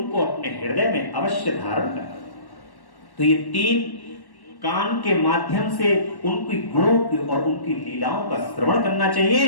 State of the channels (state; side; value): late; right; 1.1 ms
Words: अपने हृदय में अवश्य धारण करें। तो ये 3 कान के माध्यम से उनकी गुणों की और उनकी लीलाओं का श्रवण करना चाहिए,